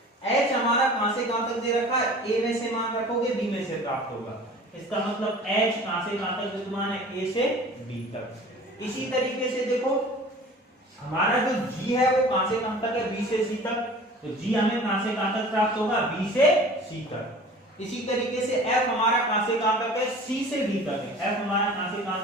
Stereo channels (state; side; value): normal; both; correlation 0.43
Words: h हमारा कहां से कहां तक दे रखा है? a में से मान रखोगे b में से प्राप्त होगा। इसका मतलब h कहां से कहां तक विद्यमान है? a से b तक। इसी तरीके से देखो हमारा जो g है वो कहां से कहां तक है? b से c तक। तो g हमें कहां से कहां तक प्राप्त होगा? b से c तक। इसी तरीके से f हमारा कहां से कहां तक है? c से d तक है। f हमारा कहां से कहां